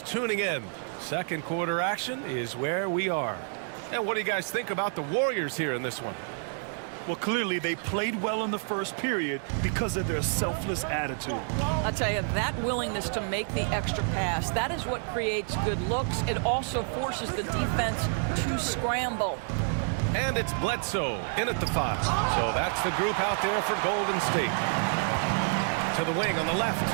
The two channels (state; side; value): silent; left; 59 dB below the other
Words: tuning in, second quarter action is where we are. And what do you guys think about the Warriors here in this one? Well, clearly they played well in the first period because of their selfless attitude. I'll tell you, that willingness to make the extra pass, that is what creates good looks. It also forces the defense to scramble. And it's Bledsoe in at the 5. So that's the group out there for Golden State. To the wing on the left.